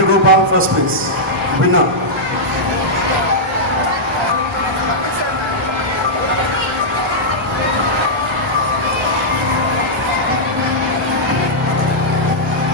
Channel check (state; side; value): normal; both; correlation -0.09